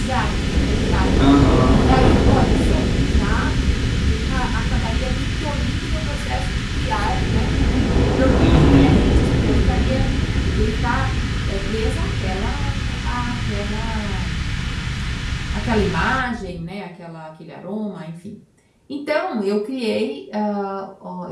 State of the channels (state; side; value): identical; both; correlation 1.00